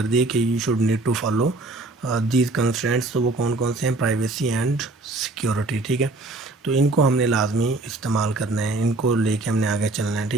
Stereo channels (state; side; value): quieter; left; 3.0 dB